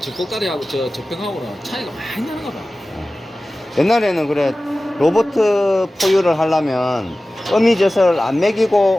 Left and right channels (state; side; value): normal; both; correlation 0.96